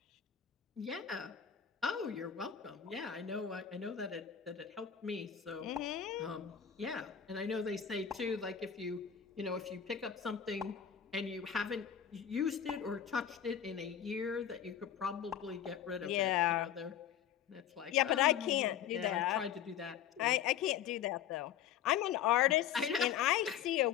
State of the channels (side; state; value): right; quieter; 9.1 dB